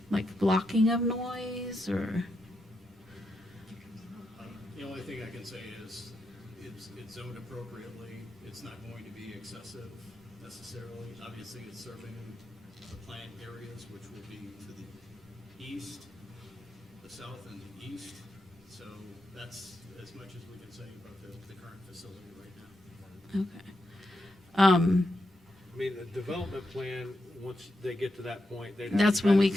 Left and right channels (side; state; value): both; normal; correlation 0.85